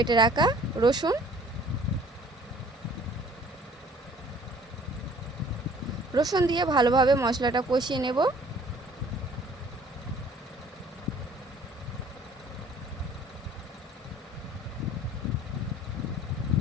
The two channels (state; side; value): normal; both; correlation 0.54